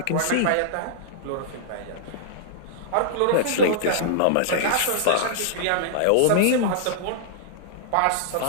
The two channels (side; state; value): both; different; correlation -0.01